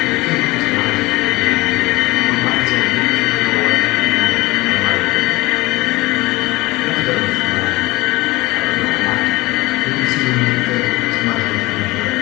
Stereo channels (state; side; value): quieter; right; 21.3 dB